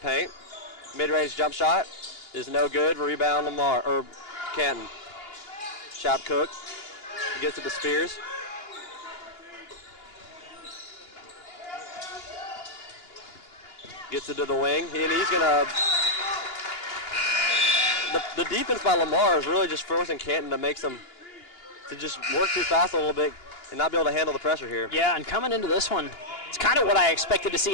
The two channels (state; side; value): late; right; 2.8 ms